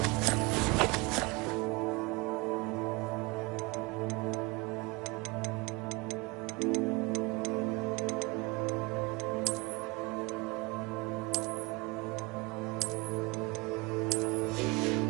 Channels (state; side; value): quieter; left; 25.4 dB